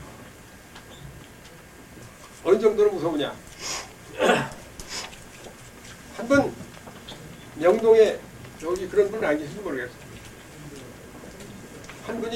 어느 정도로 무서우냐? 한번 명동에 여기 그런 분은 안 계신지 모르겠어요. 한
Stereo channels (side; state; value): both; identical; correlation 1.00